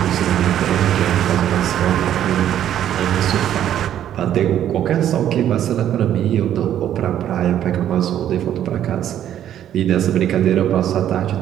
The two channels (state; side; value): quieter; left; 10.9 dB